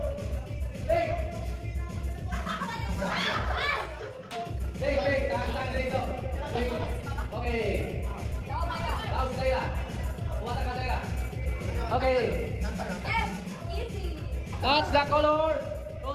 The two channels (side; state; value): both; identical; correlation 1.00